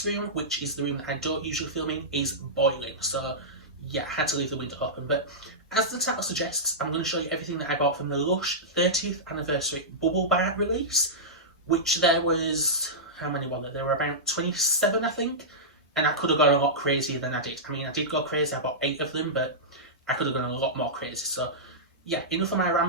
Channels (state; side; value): normal; both; correlation -0.13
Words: room, which is the room that I don't usually film in, is boiling. So yeah, I had to leave the window open. But as the title suggests, I'm going to show you everything that I bought from the Lush 30th anniversary bubble bar release, which there was, how many were there? There were about 27, I think, and I could have gone a lot crazier than I did. I mean, I did go crazy, I bought 8 of them, but I could have gone a lot more crazy. So yeah, enough of my